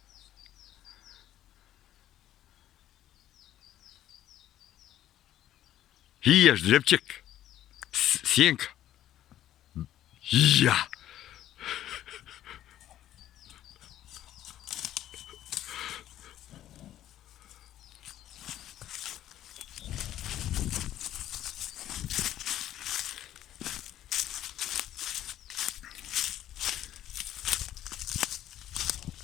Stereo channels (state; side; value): quieter; right; 12.4 dB